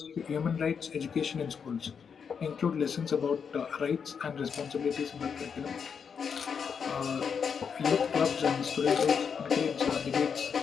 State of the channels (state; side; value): quieter; right; 6.6 dB